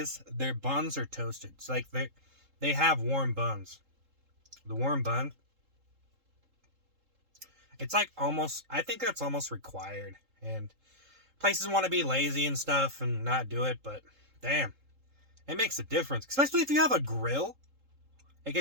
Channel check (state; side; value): late; left; 3.7 ms